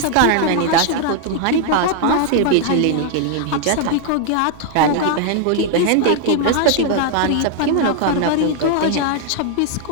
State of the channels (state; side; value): different; both; correlation 0.00